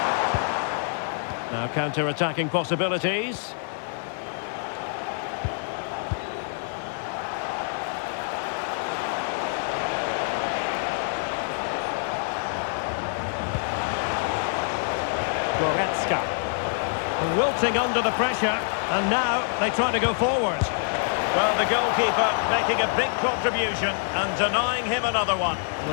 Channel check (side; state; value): right; silent; digital silence